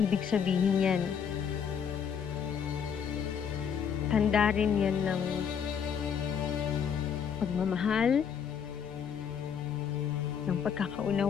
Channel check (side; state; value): right; quieter; 7.4 dB